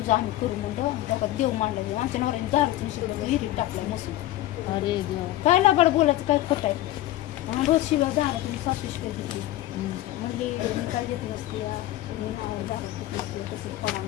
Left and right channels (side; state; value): right; quieter; 15.0 dB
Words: आम्ही करू म्हणलं त्याच्यात देव मांडलं. आमच्या नवऱ्याने दारूच विहिरीत टाकलाय मसून. अरे काय लाबाड बोलायचं काय खोट आहे. रोज शिवाय झाला तुम्ही 7 शिवाय घेतली म्हणजे मी काय घेतली असते कसं करा